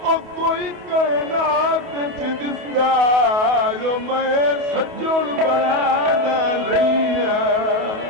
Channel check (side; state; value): left; late; 28 ms